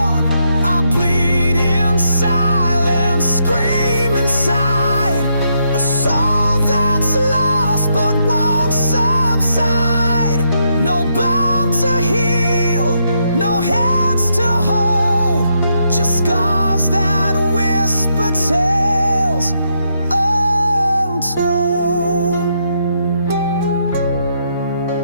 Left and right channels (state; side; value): inverted; both; correlation -0.78